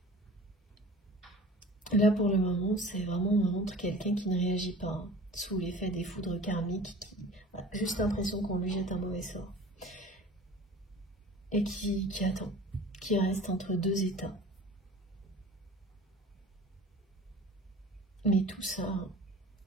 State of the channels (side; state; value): both; normal; correlation 0.42